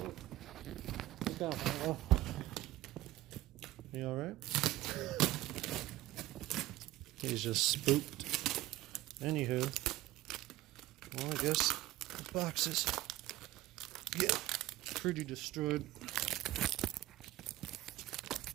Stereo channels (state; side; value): quieter; left; 16.4 dB